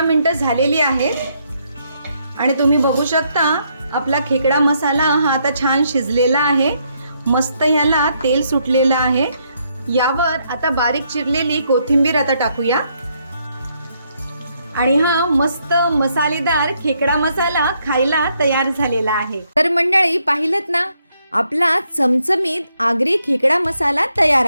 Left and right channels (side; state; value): both; inverted; correlation -0.75